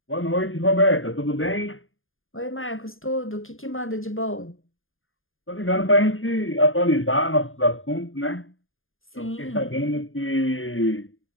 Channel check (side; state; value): right; late; 0.59 ms